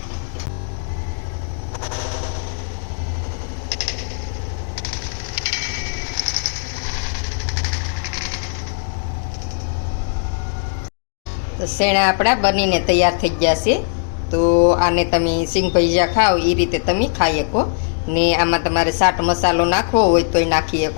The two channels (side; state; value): right; silent; digital silence